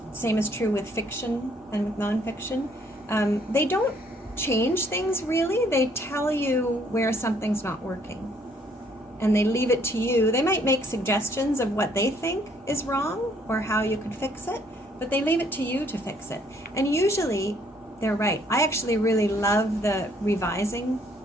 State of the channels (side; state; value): both; normal; correlation 0.65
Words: is true with fiction and with nonfiction, they don't change things really. They tell you where something's not working, and they leave it to you. They might make suggestions of what they think is wrong or how you could fix it, but they leave it to you to fix it. And usually they're right. I actually really love the revising